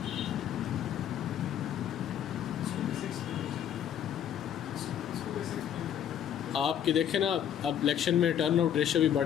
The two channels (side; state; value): right; quieter; 9.6 dB